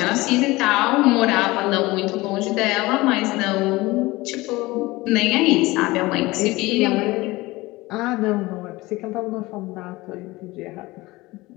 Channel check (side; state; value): right; quieter; 20.5 dB